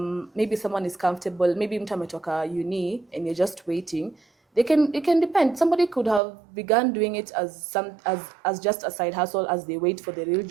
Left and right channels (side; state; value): left; drops out; at 6.2 s